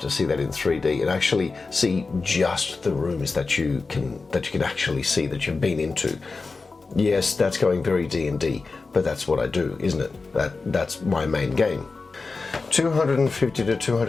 see that in 3D and actually see just the rooms that you can actually see that you've been into. Yes, that's going very D&D, but that's what I do, isn't it? That's my main game. $250 to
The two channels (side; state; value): right; quieter; 4.1 dB